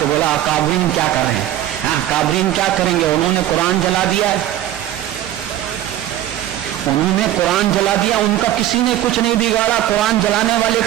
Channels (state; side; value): quieter; left; 12.9 dB